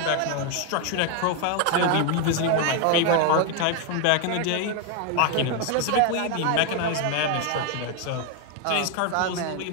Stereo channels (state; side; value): different; both; correlation 0.01